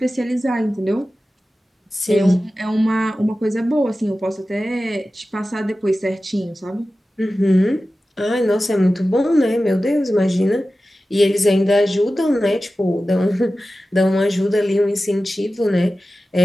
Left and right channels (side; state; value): both; normal; correlation 0.95